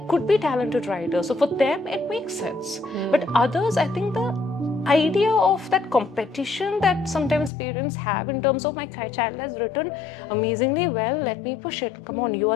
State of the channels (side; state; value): right; drops out; at 7.5 s